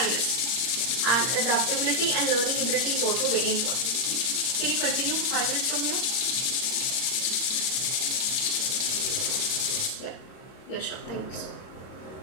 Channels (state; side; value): late; right; 32 ms